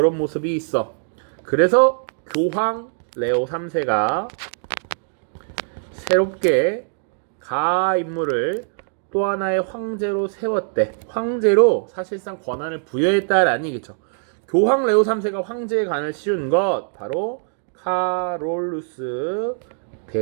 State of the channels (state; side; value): silent; left; digital silence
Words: 모습이 있어. 그래서 교황 레오 3세가 새롭게 가 인물을 또 하나의 황제로 세웠대. 황제로 사실상 권한을 부여했다라는 얘기죠. 교황 레오 3세가 황제의 관을 씌운 것 바로 카롤루스